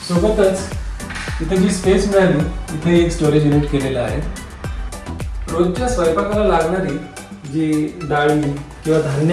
सोबतच इथे जी स्पेस मिळाली इथे एक स्टोरेज युनिट केलेलं आहे. रोजच्या स्वयंपाकाला लागणारी जी डाळी किंवा धान्य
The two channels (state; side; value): identical; both; correlation 1.00